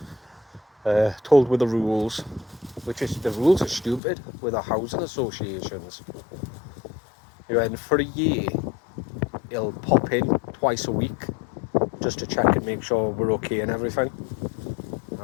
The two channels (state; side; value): drops out; right; at 4.0 s